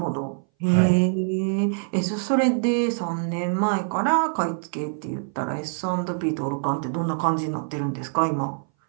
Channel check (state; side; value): silent; left; 60 dB below the other